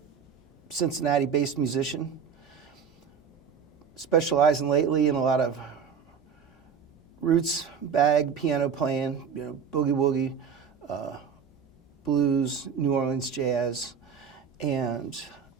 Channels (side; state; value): left; quieter; 6.8 dB